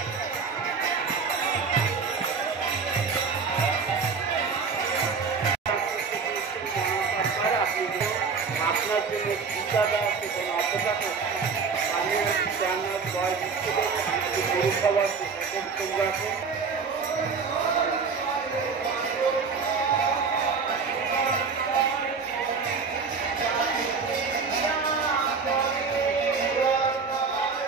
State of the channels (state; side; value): quieter; left; 5.2 dB